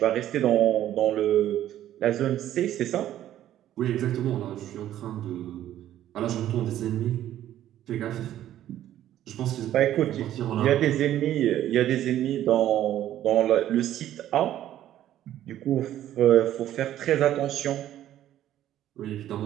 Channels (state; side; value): quieter; left; 12.3 dB